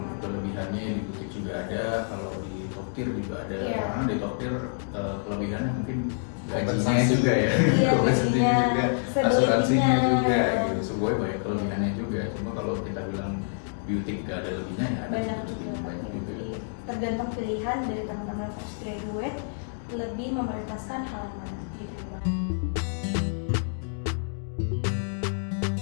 Kelebihannya di butik juga ada, kalau di Toktir juga ada. Iya. Karena di Toktir kelebihannya mungkin gajinya Kompensasi. juga ya, Iya, kompensasinya gajinya, juga, stability-nya, asuransinya juga, ya. gitu. Semuanya banyak kelebihannya juga. Cuma kalau kita bilang beauty gak ada lebihnya ya ada Banyak lebih, juga. banyak juga. Jadi tergantung pilihan dari teman-teman yang fresh graduate lebih memprioritaskan hal yang mana gitu ya, Bang.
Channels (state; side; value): silent; right; digital silence